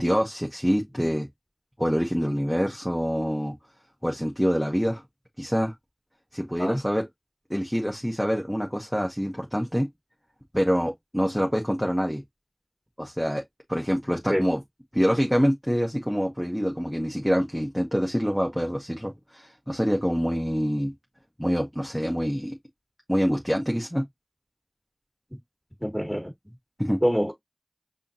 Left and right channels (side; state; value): both; identical; correlation 1.00